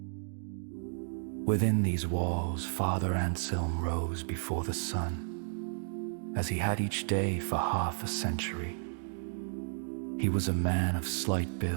Within these walls, Father Anselm rose before the sun, as he had each day for half a century. He was a man of slight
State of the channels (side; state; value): left; silent; digital silence